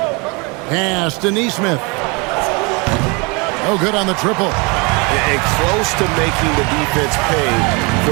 Pass to Neesmith. Oh, good on the triple. And close to making the defense pay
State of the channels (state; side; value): quieter; left; 29.6 dB